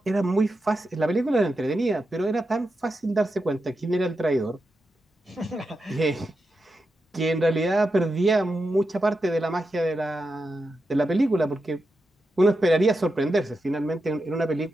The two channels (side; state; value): both; normal; correlation 0.88